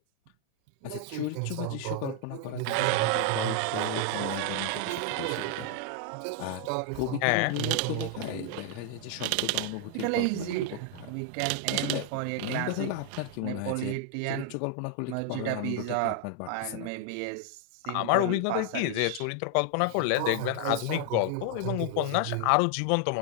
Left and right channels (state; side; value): different; both; correlation 0.00